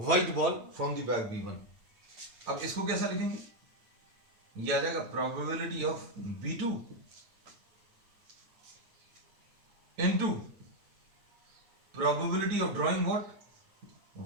ball from the bag B1। अब इसको कैसा लिखेंगे, ये आ जाएगा probability of B2 into probability of drawing what,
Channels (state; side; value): late; left; 9.1 ms